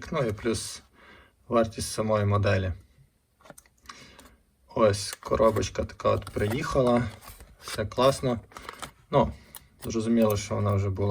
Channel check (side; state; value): both; identical; correlation 1.00